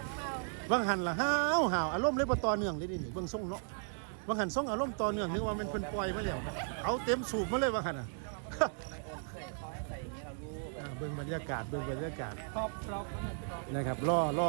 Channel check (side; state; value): left; silent; 54 dB below the other